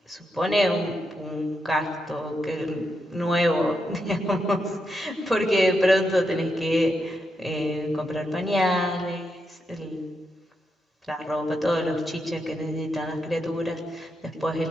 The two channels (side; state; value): both; normal; correlation 0.83